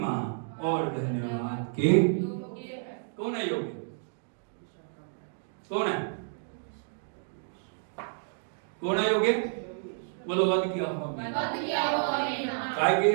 और धन्यवाद के कौन है योग्य? कौन है? कौन है योग्य? बोलो वध किया हुआ मेमना। काय के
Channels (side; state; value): left; silent; digital silence